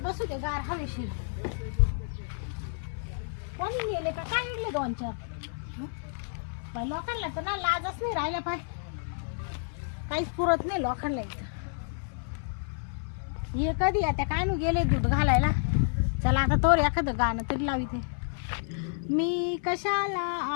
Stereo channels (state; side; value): silent; right; 58 dB below the other